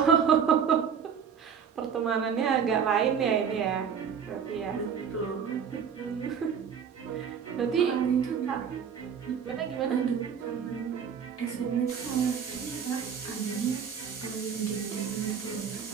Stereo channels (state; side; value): quieter; left; 7.2 dB